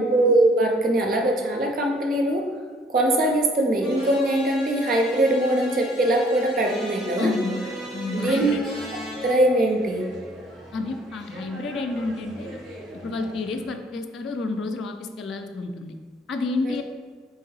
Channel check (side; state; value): both; normal; correlation 0.60